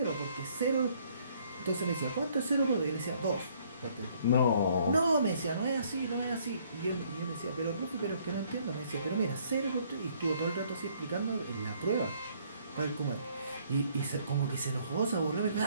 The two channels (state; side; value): inverted; both; correlation -0.64